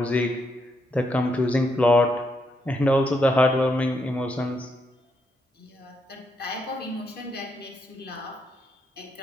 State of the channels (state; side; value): normal; both; correlation 0.78